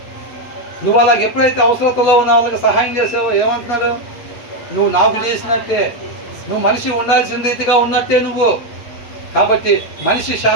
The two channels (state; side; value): late; right; 8.3 ms